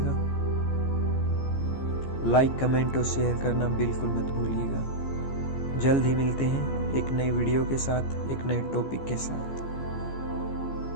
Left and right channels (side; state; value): right; late; 14 ms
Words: लाइक, कमेंट और शेयर करना बिल्कुल मत भूलिएगा। जल्द ही मिलते हैं एक नई वीडियो के साथ, एक नए टॉपिक के साथ।